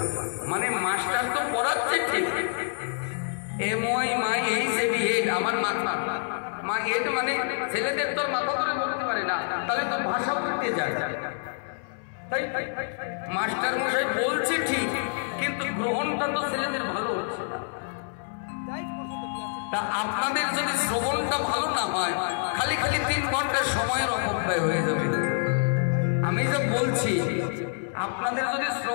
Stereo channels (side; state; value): right; silent; 60 dB below the other